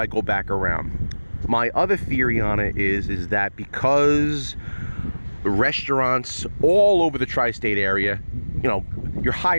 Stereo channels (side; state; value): both; inverted; correlation -1.00